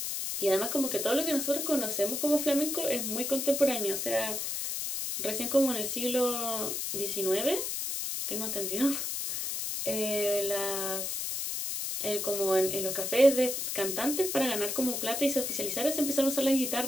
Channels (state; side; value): noise; left; hiss, 2 dB below the sound